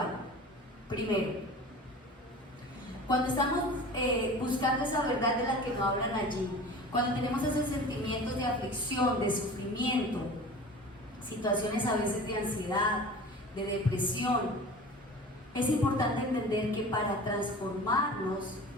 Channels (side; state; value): both; normal; correlation 0.38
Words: Primero, cuando estamos buscando esa verdad de la que nos hablan allí, cuando tenemos esos sentimientos de aflicción, de sufrimiento, situaciones a veces de ansiedad, de depresión, es importante entender que para transformarnos